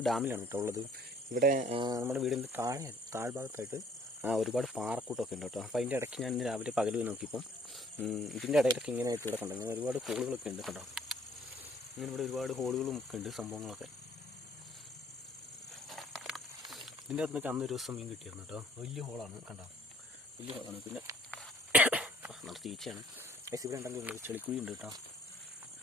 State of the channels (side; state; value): both; normal; correlation 0.58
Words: ഡാമിലാണ് കേട്ടോ ഉള്ളത്. ഇവിടെ നമ്മുടെ വീടിൻ്റെ താഴ്ഭാഗത്തായിട്ട് ഒരുപാട് പാറക്കൂട്ടമൊക്കെ ഉണ്ട് കേട്ടോ. അപ്പോൾ അതിൻ്റെ ഇടയ്ക്ക് ഞാൻ ഇന്ന് രാവിലെ പകൽ നോക്കിയപ്പോൾ ഇതിൻ്റെ ഇടയിലൊക്കെ ഇങ്ങനെ ആയിട്ട് ഇവിടെ കണ്ടു. ഇങ്ങനെ ഒരുപാട് ഹോളുകളൊക്കെ ഉണ്ട് കേട്ടോ. ഇങ്ങനെ ഇവിടെ ഒരുപാട് ഹോളുകളും ഒക്കെ ഉണ്ട്, സംഭവങ്ങളൊക്കെ. ഇതിൻ്റെ അകത്ത് നിന്നൊക്കെ അന്നൊരു ദിവസം മീൻ കിട്ടിയിരുന്നു കേട്ടോ. വലിയ ഹോളാണ് കണ്ടോ, വലിയ ഹോളാണ്. പിന്നെ നമ്മുടെ ചേച്ചിയാണ് ഗൈസ്. ഇവിടെ ഉണ്ടെങ്കിൽ ചെളിക്കുഴി ഉണ്ട് കേട്ടോ.